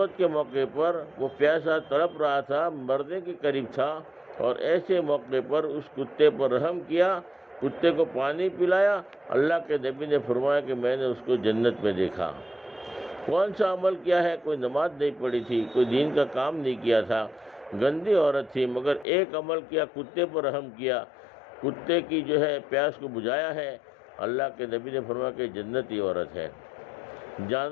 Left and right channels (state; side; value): drops out; right; at 19.1 s